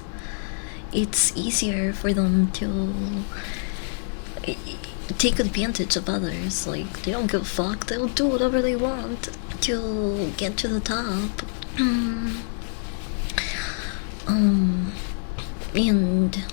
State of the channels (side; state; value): right; silent; 61 dB below the other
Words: It's easier for them to take advantage of others. Like, they don't give a fuck. They'll do whatever they want to get to the top. And